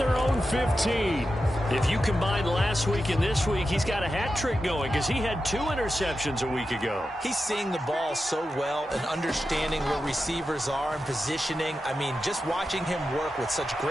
own 15. If you combine last week and this week, he's got a hat trick going because he had 2 interceptions a week ago. He's seeing the ball so well and understanding where receivers are and positioning. I mean, just watching him work with such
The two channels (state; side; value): normal; both; correlation 0.90